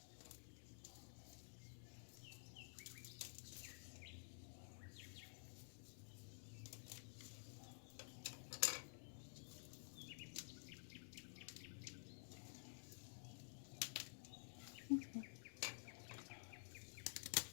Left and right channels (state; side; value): silent; right; digital silence